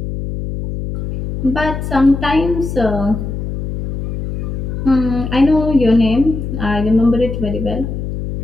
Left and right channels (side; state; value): left; noise; hum, 5 dB below the sound